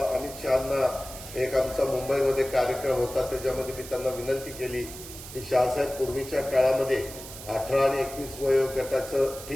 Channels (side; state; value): right; noise; hiss, 13 dB below the sound